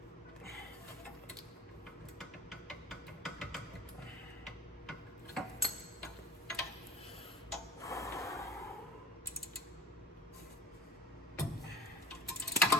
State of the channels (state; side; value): normal; both; correlation 0.42